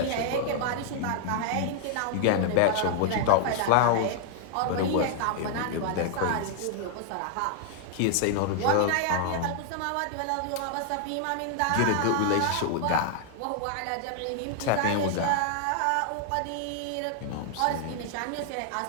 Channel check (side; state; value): both; different; correlation 0.00